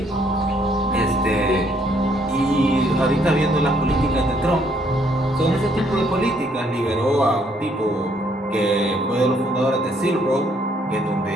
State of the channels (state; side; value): normal; both; correlation 0.68